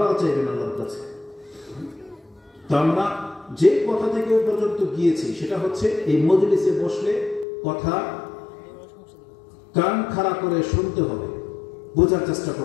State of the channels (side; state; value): right; drops out; at 7.5 s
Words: চাইবেন আল্লাহর কাছে। তো আমরা যে কথা থেকে ওই পর্যন্ত গিয়েছি সেটা হচ্ছে এই মজলিসে বসলে কথা কান খাড়া করে শুনতে হবে, বোঝার চেষ্টা